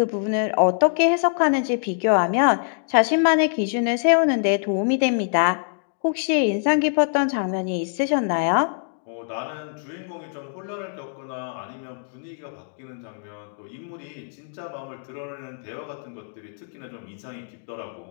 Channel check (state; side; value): silent; right; digital silence